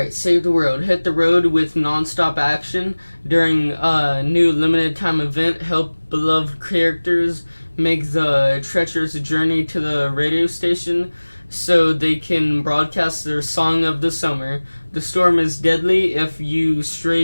save the world. Hit the road with non-stop action during a new limited time event. Help beloved characters make the treacherous journey to the radio station so they can broadcast their song of the summer. The storm is deadly if you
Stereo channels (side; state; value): both; inverted; correlation -1.00